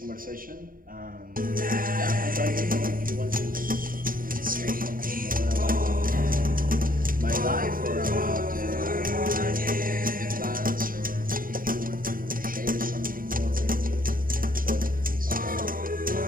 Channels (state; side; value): late; left; 0.41 ms